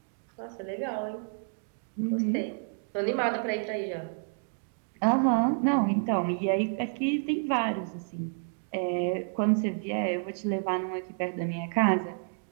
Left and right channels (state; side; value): silent; left; digital silence